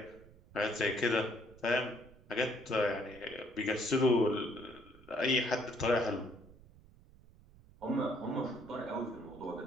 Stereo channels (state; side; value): noise; right; rumble, 23 dB below the sound